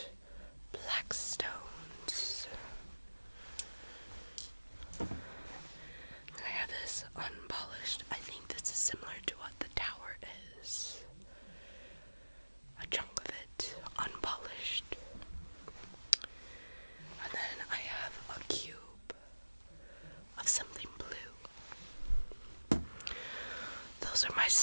black stones. I have this unpolished. I think this is similar to what the tower is. A chunk of it unpolished. And then I have a cube of something blue. Those are my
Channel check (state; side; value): inverted; both; correlation -1.00